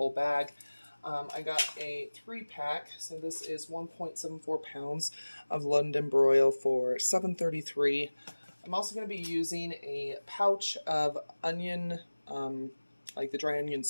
bag. I got a 3-pack, so this is 1.74 pounds of London broil for $7.33. I'm also going to be using a pouch of onion, like the dry onion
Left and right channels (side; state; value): both; inverted; correlation -1.00